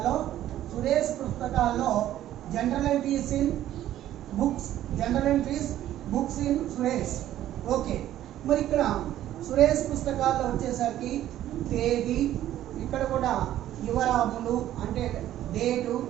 సురేష్ పుస్తకాల్లో general entries books in Suresh. Okay, మరి ఇక్కడ సురేష్ పుస్తకాల్లో వచ్చేసరికి తేదీ, ఇక్కడ కూడా వివరములు అంటే డేటు,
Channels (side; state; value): left; quieter; 12.7 dB